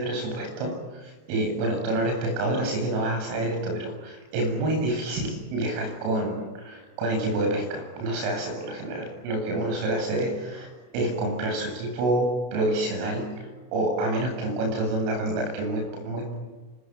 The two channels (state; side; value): late; left; 32 ms